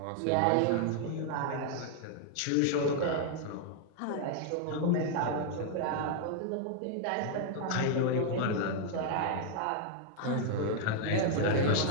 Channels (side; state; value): both; different; correlation 0.00